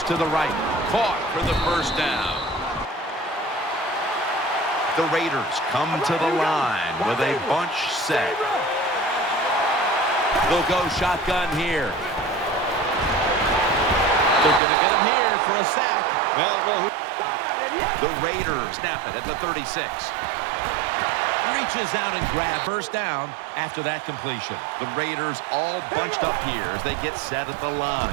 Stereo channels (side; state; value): left; drops out; at 14.6 s